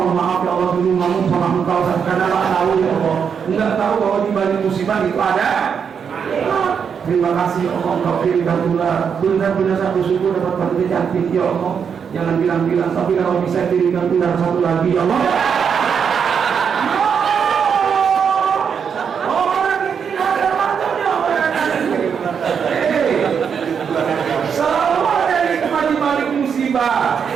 maaf ya Allah, dulu ngomong sama engkau karena tak tahu ya Allah, enggak tahu bahwa di balik musibah itu ada. Terima kasih ya Allah, engkau kirimkan ular. Benar-benar saya bersyukur dapat wanita cantik ya Allah. Jangan bilang-bilang, tapi kalau bisa kirimkan ular satu lagi ya Allah.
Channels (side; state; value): left; quieter; 6.9 dB